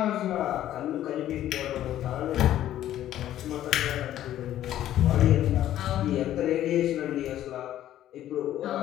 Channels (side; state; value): right; quieter; 12.4 dB